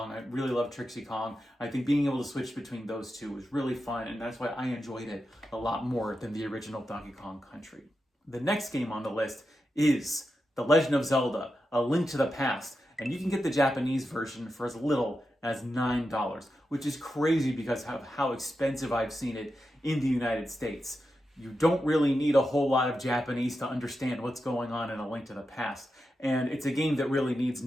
I really love Trixie Kong. I think being able to switch between those two was really fun, and that's why I enjoyed it a lot more than the original Donkey Kong Country. The next game on the list is The Legend of Zelda, A Link to the Past, and you can get the Japanese version for as little as $9, which is crazy because of how expensive I've seen it in the United States. You don't really need a whole lot of Japanese to understand what's going on in A Link to the Past, and it's a game that really needs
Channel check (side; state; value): both; normal; correlation 0.88